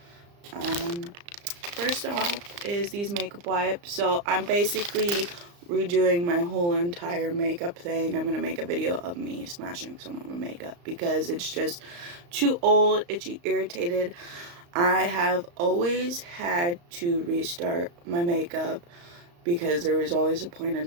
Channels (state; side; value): late; left; 35 ms